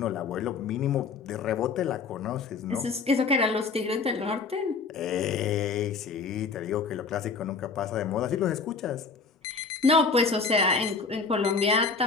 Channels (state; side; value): quieter; right; 4.8 dB